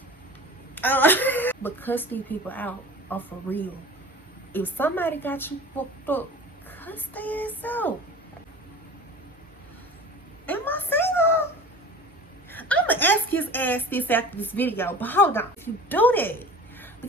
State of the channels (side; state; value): both; normal; correlation 0.39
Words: But cuss these people out are for real. If somebody got you fucked up, cuss their ass out. Am I single? I'm gonna ask his ass this after this video, but hold on. If you do that,